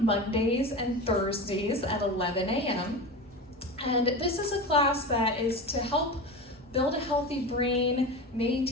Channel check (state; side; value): normal; both; correlation 0.27